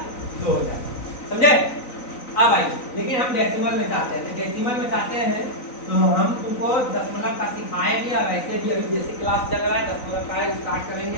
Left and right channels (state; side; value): late; right; 3.9 ms